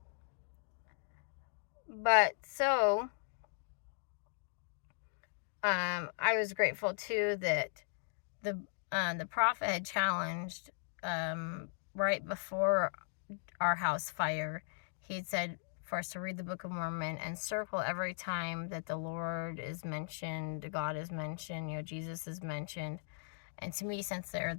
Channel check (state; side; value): silent; right; digital silence